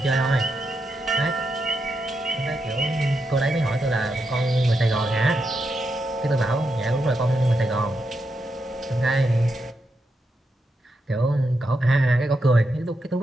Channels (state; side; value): normal; both; correlation 0.84